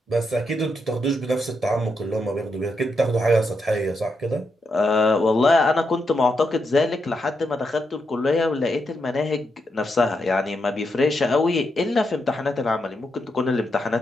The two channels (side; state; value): both; normal; correlation 0.83